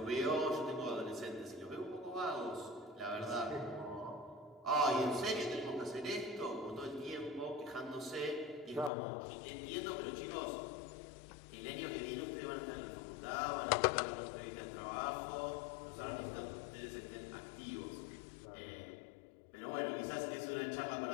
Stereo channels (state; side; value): drops out; right; at 8.9 s